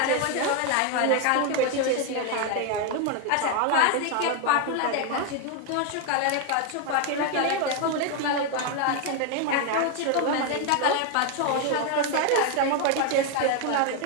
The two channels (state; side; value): different; both; correlation 0.01